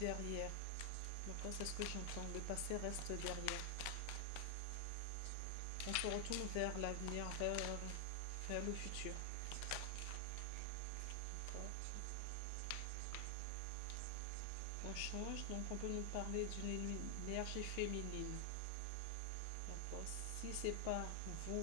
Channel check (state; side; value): different; both; correlation 0.00